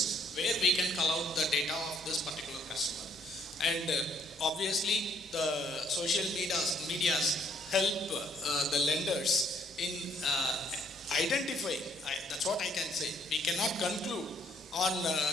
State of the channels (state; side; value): normal; both; correlation 0.67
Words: where we can call out the data of this particular customer. And obviously the social medias help the lenders in identifying, that's what I can say. We cannot conclude on